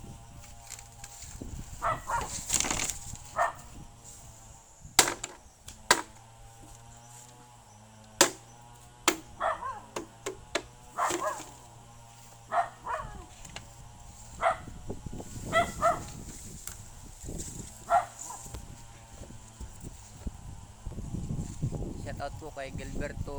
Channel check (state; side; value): identical; both; correlation 1.00